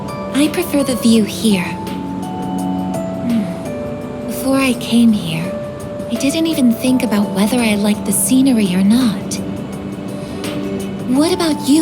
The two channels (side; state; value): both; identical; correlation 1.00